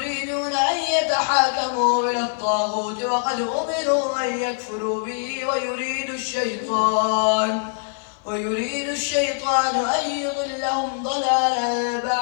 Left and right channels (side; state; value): right; silent; 55 dB below the other